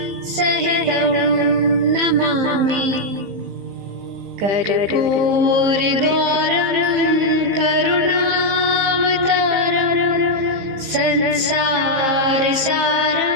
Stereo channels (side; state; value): left; late; 15 ms